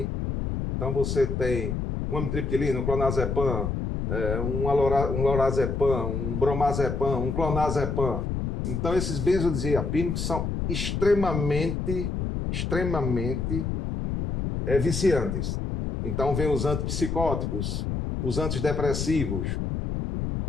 Então você tem um amitriptilina, um clonazepam, um lorazepam, um bromazepam, um clonazepam. Então esses benzodiazepínicos são extremamente viciantes. Então vem os antipsicóticos, os antidepressivos,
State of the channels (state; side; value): noise; left; rumble, 2 dB below the sound